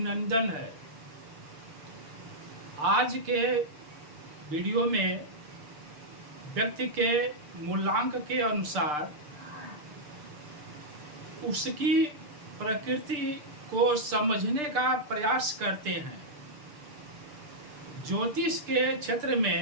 है। आज के वीडियो में व्यक्ति के मूलांक के अनुसार उसकी प्रकृति को समझने का प्रयास करते हैं। ज्योतिष के क्षेत्र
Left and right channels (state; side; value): late; left; 6.7 ms